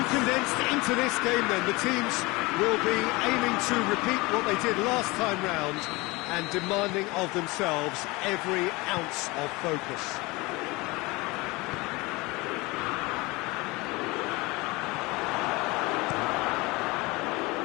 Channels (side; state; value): right; quieter; 23.6 dB